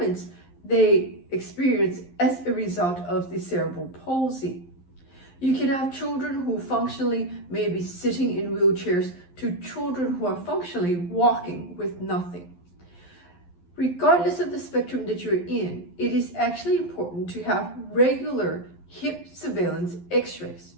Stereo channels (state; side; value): late; right; 11 ms